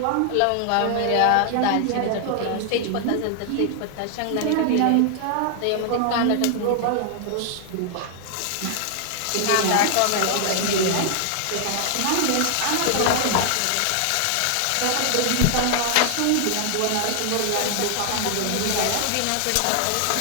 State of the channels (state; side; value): different; both; correlation 0.00